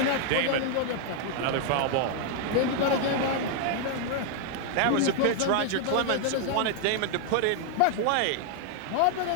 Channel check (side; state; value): both; different; correlation 0.00